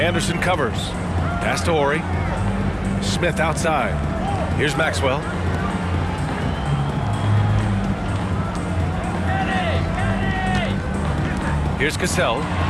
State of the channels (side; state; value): both; identical; correlation 1.00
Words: covers. Pass to Ori. Smith outside. Here's Maxwell. Here's Cassell.